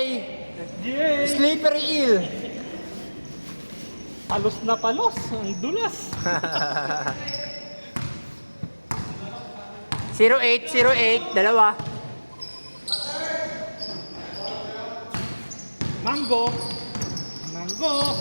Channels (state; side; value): inverted; both; correlation -1.00